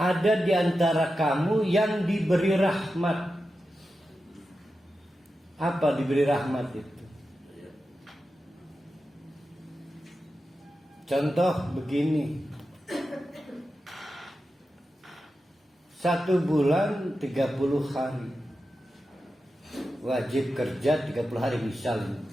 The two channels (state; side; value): normal; both; correlation 0.91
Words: di antara kamu yang diberi rahmat. Apa diberi rahmat itu? Contoh begini. 1 bulan 30 hari. Wajib kerja 30 hari misalnya.